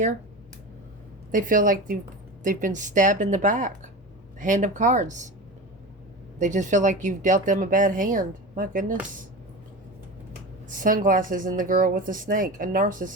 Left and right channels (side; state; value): both; normal; correlation 0.28